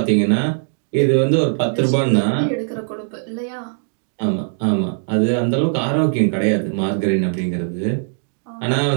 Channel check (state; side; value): silent; left; digital silence